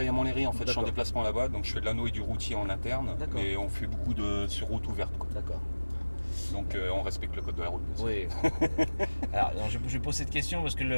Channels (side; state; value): both; inverted; correlation -1.00